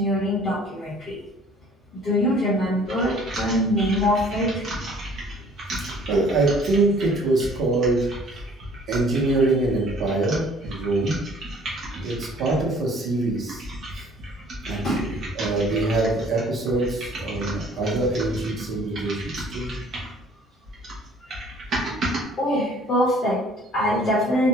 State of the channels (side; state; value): both; normal; correlation 0.55